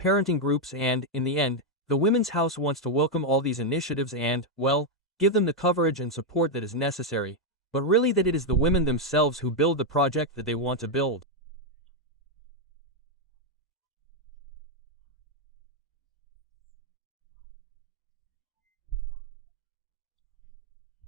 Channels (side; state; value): both; normal; correlation 0.01